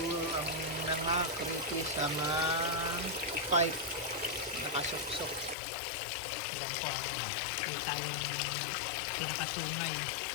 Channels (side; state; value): right; drops out; at 5.6 s